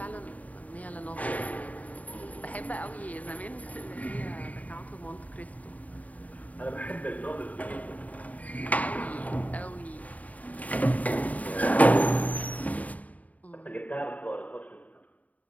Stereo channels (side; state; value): right; late; 0.072 ms